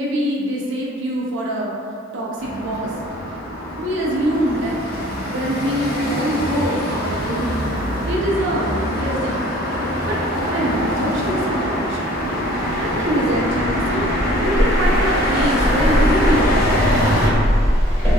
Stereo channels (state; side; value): normal; both; correlation 0.53